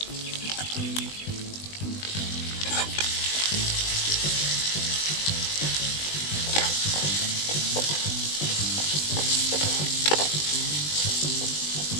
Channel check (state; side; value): late; right; 20 ms